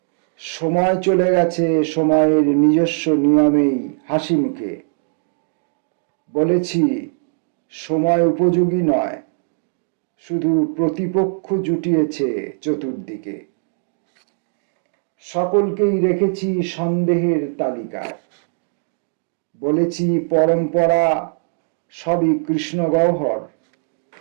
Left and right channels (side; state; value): left; silent; digital silence